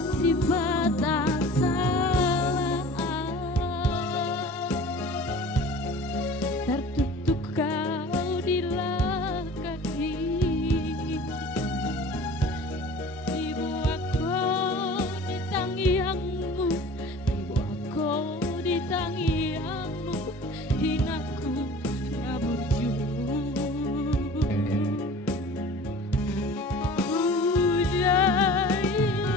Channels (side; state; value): both; normal; correlation 0.42